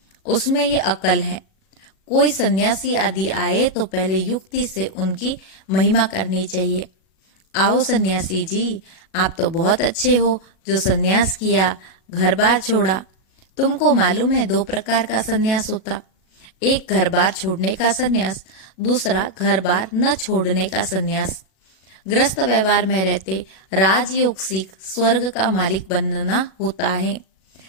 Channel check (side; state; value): right; late; 37 ms